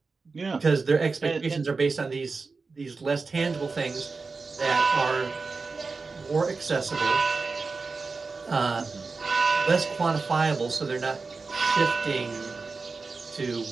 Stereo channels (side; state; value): left; quieter; 4.3 dB